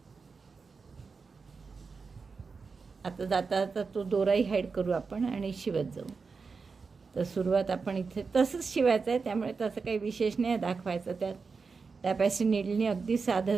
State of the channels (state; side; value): quieter; left; 4.8 dB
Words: आता जाता जाता तो दोराही हाईड करू आपण आणि शिवत जाऊ. तर सुरुवात आपण इथे तसंच शिवायचं आहे. त्यामुळे तसं काही विशेष नाही दाखवायचं त्यात. टॅपॅसी नीडलने अगदी साधं